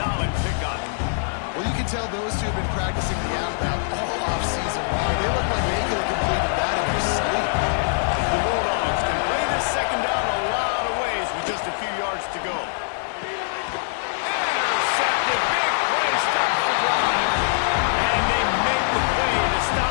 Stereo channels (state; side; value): silent; right; digital silence